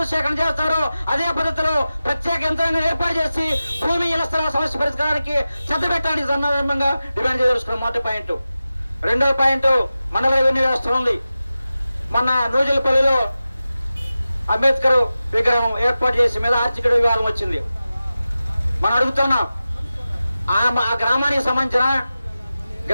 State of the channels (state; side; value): inverted; both; correlation -0.94